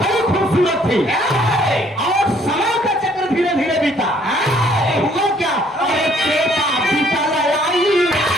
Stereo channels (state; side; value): normal; both; correlation 0.62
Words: खूबसूरत थी और समय का चक्र धीरे धीरे बीता। हुआ क्या, अरे त्रेता बीता आई,